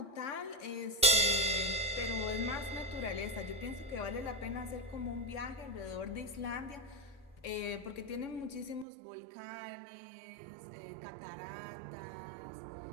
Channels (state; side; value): drops out; left; at 8.8 s